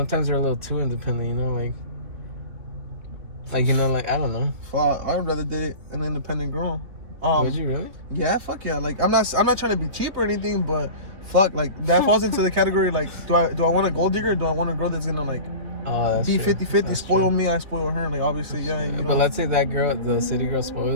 they're a little too independent, you know, like you know, like I don't know. I'd rather date an independent girl. Would you really? Yeah, fuck yeah. Like I'm not trying to be cheap or anything, but fuck, like that falls into the category like do I want a gold digger or do I want a girl that's gonna like be 50-50, spoil me, I spoil her, like obviously, yeah. You know? But let's say that girl, the city girl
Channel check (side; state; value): left; late; 3.1 ms